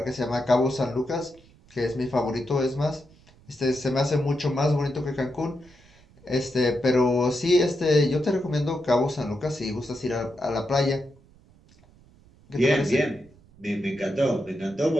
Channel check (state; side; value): noise; right; rumble, 27 dB below the sound